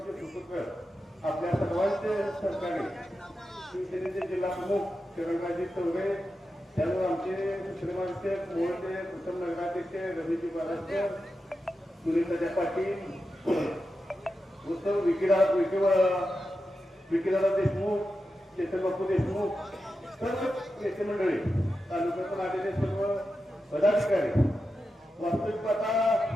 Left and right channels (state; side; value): normal; both; correlation 0.90